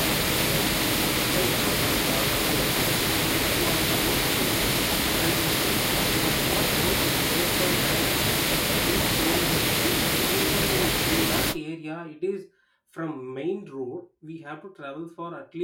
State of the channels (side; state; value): both; identical; correlation 1.00